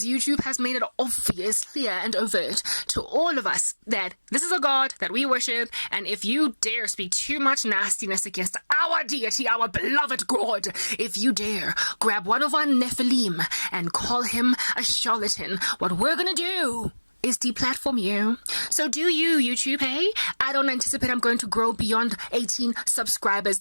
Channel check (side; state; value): both; inverted; correlation -1.00